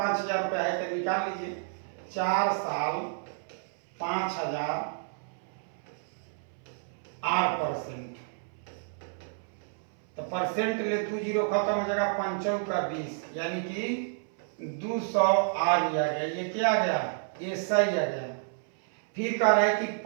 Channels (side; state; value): left; silent; 58 dB below the other